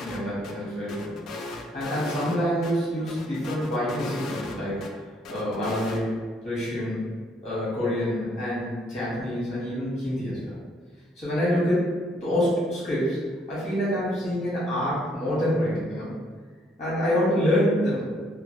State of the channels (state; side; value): normal; both; correlation 0.67